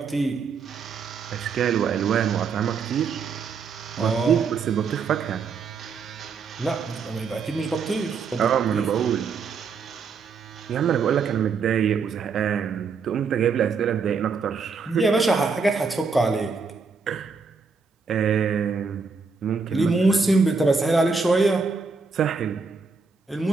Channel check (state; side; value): quieter; left; 5.1 dB